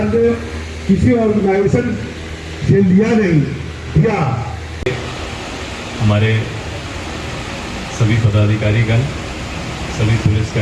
ने किसी ऑर्गेनाइजेशन से लिया नहीं, दिया। हमारे सभी पदाधिकारीगण, सभी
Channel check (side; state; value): both; identical; correlation 1.00